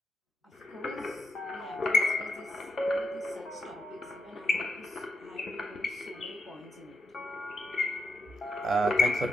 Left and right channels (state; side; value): normal; both; correlation 0.83